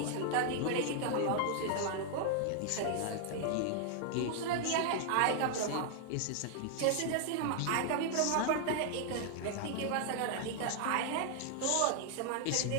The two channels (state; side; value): different; both; correlation 0.00